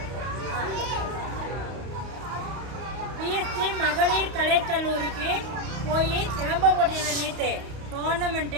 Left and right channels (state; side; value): late; left; 31 ms